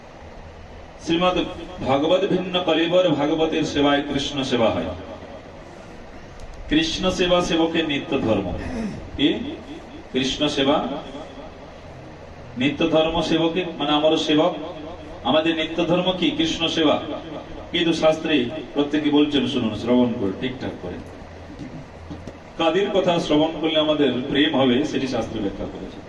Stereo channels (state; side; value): identical; both; correlation 1.00